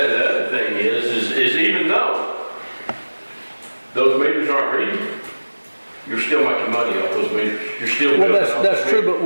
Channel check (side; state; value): both; inverted; correlation -1.00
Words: thing is even though those meters aren't reading, you're still making money off those meters. You're still Well, building off that's the true,